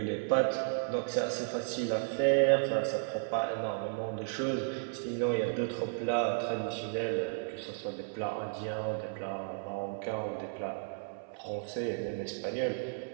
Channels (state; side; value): silent; left; 55 dB below the other